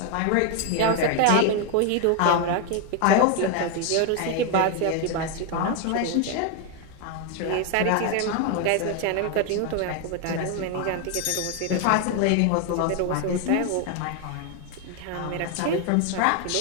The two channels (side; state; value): both; different; correlation 0.01